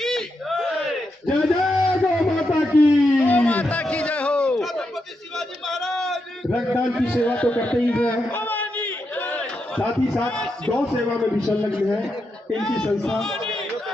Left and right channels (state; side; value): normal; both; correlation 0.84